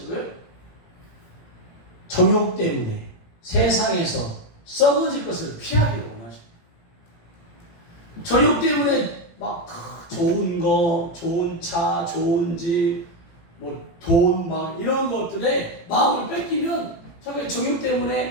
거예요? 정욕 때문에 세상에서 썩어질 것을 피하기를 원하십니다. 정욕 때문에 막 좋은 거, 좋은 차, 좋은 집, 돈 막 이런 것들에 마음을 뺏기면 정욕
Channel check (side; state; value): right; late; 18 ms